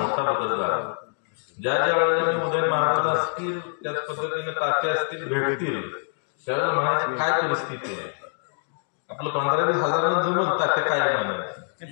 बदल झाला. ज्या ज्या वेळेला उदय महाराज असतील, त्याच पद्धतीने तात्या असतील भेटतील, त्यावेळेला म्हणायची काय परिस्थिती आहे. आपलं 15-20 हजारांना जमल तात्या काय म्हणायचं,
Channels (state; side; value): silent; right; digital silence